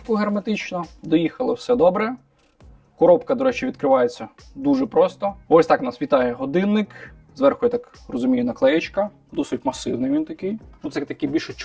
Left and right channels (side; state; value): both; identical; correlation 1.00